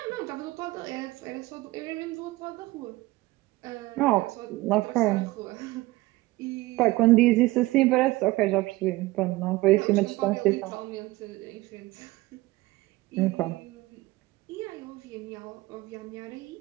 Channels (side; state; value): left; quieter; 19.7 dB